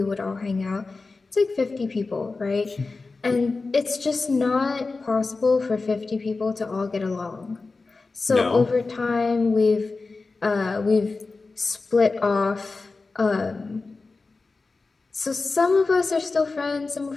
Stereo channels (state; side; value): quieter; right; 3.8 dB